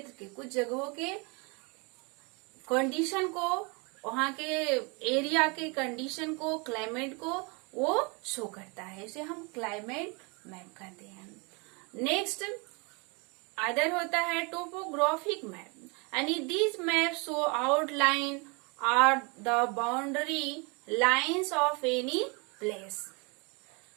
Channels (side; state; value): left; quieter; 30.8 dB